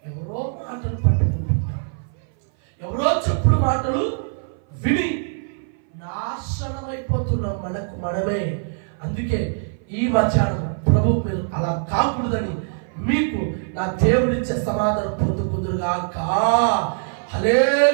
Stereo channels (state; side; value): silent; left; 58 dB below the other